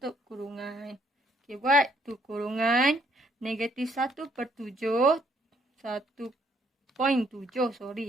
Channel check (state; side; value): normal; both; correlation 0.68